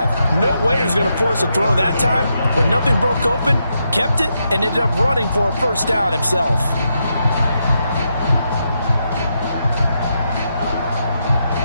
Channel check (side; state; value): both; inverted; correlation -0.82